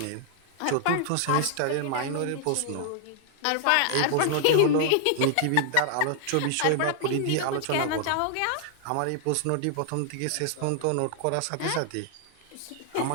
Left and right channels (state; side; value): different; both; correlation -0.01